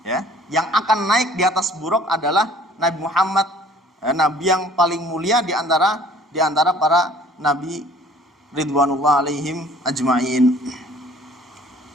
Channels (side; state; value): both; normal; correlation 0.53